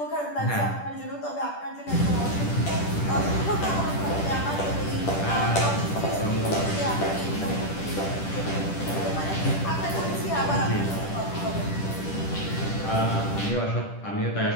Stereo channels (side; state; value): right; late; 10 ms